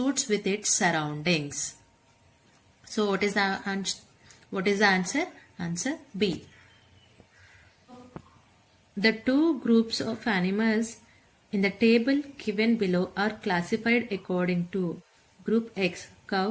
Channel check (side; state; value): both; identical; correlation 1.00